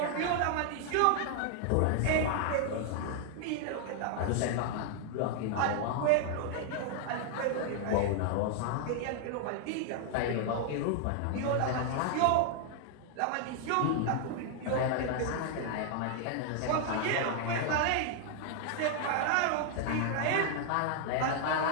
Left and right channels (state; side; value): different; both; correlation 0.00